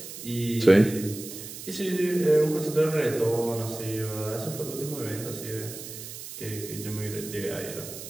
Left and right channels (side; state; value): right; noise; hiss, 11 dB below the sound